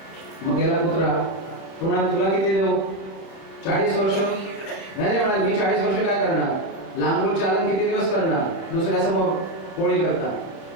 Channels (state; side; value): late; right; 31 ms